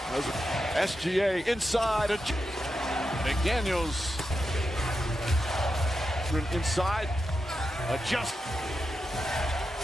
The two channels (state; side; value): normal; both; correlation 0.88